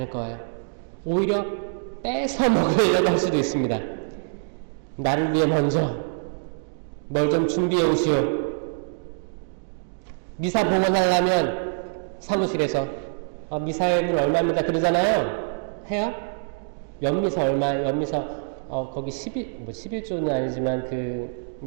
거예요. 오히려 뺏어 먹으려고 할 수도 있습니다. 나를 위해 먼저 뭘 좀 준비해 오시오. 미사 봉헌하려면 사무실에서 미사액은 얼마입니다 그러잖아요. 해요? 연미사 얼마? 연미사 거기 11조는 아니지만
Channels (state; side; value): silent; left; digital silence